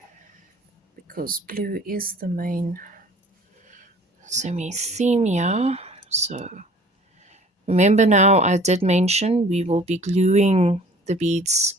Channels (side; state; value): both; normal; correlation 0.49